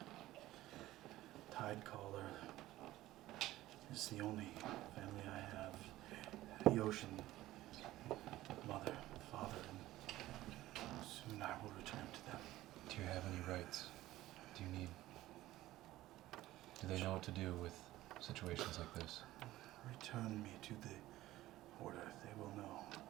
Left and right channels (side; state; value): left; quieter; 15.9 dB